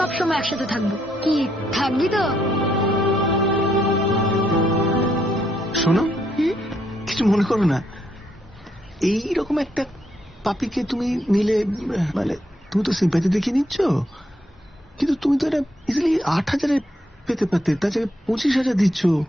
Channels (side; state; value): both; normal; correlation 0.75